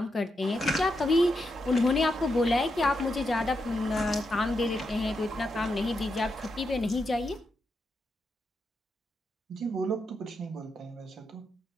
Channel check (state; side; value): normal; both; correlation 0.84